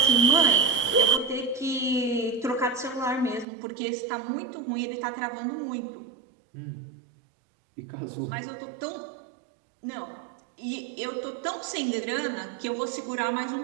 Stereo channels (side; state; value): left; drops out; at 3.5 s